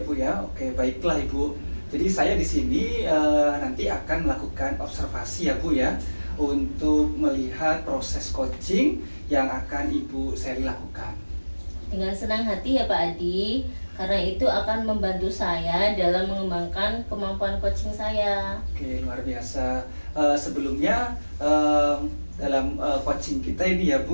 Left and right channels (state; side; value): inverted; both; correlation -1.00